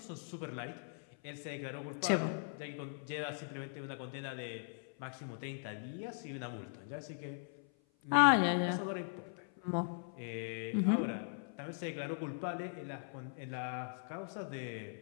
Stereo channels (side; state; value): right; silent; 51 dB below the other